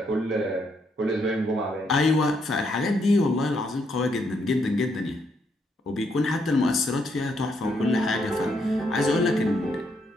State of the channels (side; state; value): both; normal; correlation 0.75